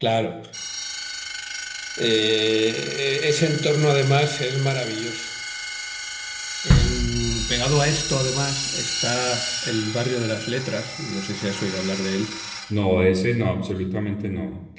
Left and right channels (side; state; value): both; identical; correlation 1.00